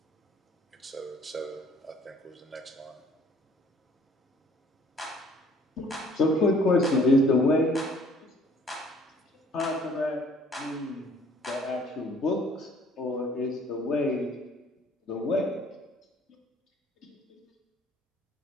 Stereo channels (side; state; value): both; normal; correlation 0.57